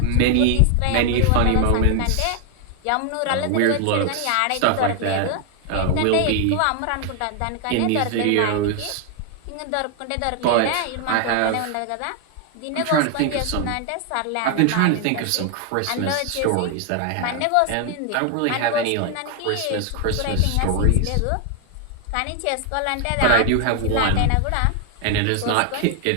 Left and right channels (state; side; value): different; both; correlation 0.00